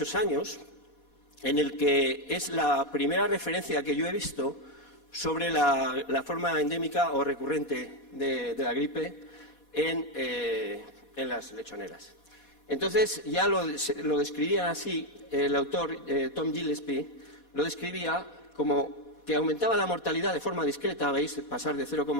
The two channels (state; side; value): late; right; 4.2 ms